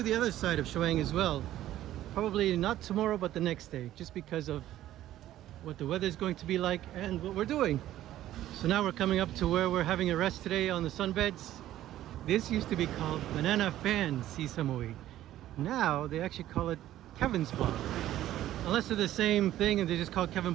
the other side of Chaweng as well. Probably not tomorrow, but the next day, just because of what the weather is going to be like and what we're doing. So now we're coming up to where we're having a rest today on the sunbeds. This used to be called Banana Fan Koh Samui. Now they actually call it Kevin's Bar. Unless they're the same thing and they just call Kevin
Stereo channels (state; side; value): quieter; left; 13.4 dB